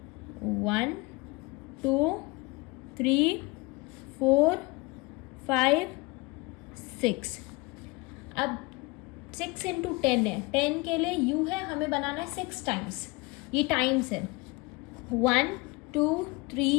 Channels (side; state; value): right; quieter; 24.9 dB